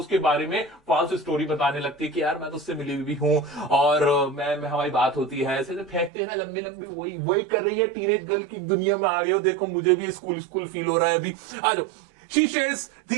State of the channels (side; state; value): left; drops out; at 6.1 s